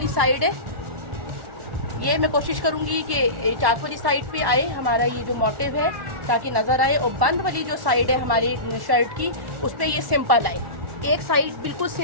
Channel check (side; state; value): left; late; 1.1 ms